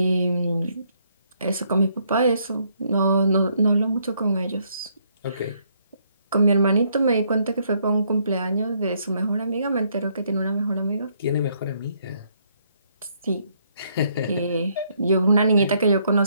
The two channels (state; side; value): inverted; both; correlation -0.71